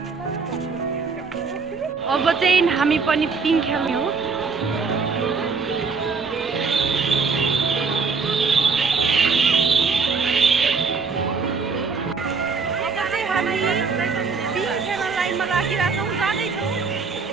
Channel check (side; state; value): left; quieter; 5.0 dB